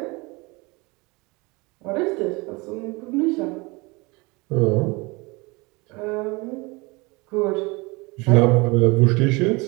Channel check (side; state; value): left; quieter; 25.9 dB